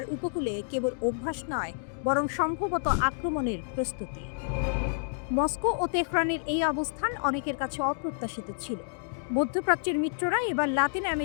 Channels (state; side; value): silent; right; digital silence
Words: উপকূলে কেবল অভ্যাস নয়, বরং সম্ভবত আক্রমণের প্রস্তুতি। মস্কো ও তেহরানের এই অবস্থান অনেকের কাছে অপ্রত্যাশিত ছিল। মধ্যপ্রাচ্যের মিত্ররা এবার লাতিন